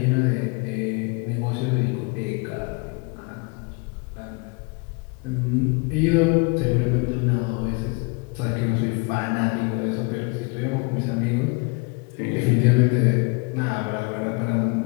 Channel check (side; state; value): right; quieter; 31.1 dB